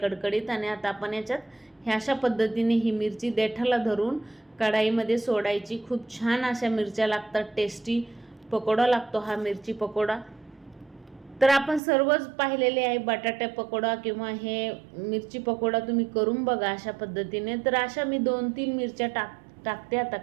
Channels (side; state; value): left; drops out; at 11.8 s